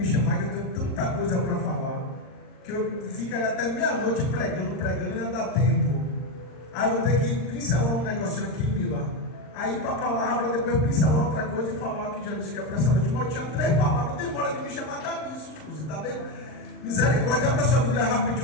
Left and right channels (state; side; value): late; right; 39 ms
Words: chamar que eu tenho tanta coisa para falar, que eu ficaria até meia-noite pregando, e não dá tempo. Aí eu vou ter que pincelar um negocinho aqui, Mila. Aí para a palavra, depois pincelar outra coisa e falar o que já disse que é para essa noite. Mas eu tinha 3 palavras, demora de me chamar, dá nisso, Suzy, tá bem? Misericórdia, abra sua Bíblia